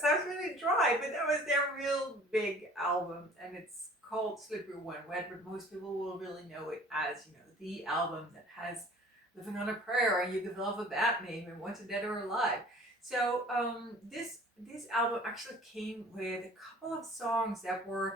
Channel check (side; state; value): both; normal; correlation 0.49